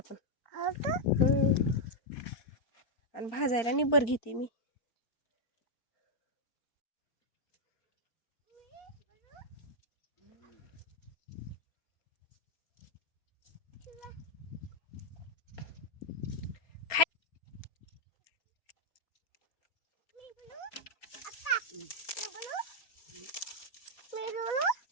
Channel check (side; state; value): right; late; 4.2 ms